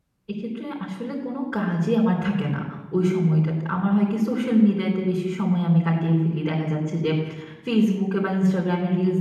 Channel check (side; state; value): both; identical; correlation 1.00